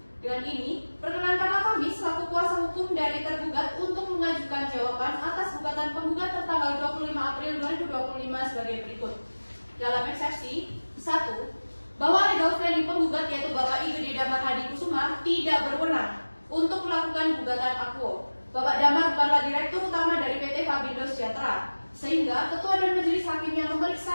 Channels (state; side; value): inverted; both; correlation -1.00